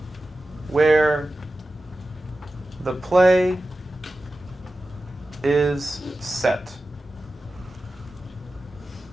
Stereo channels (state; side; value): normal; both; correlation 0.94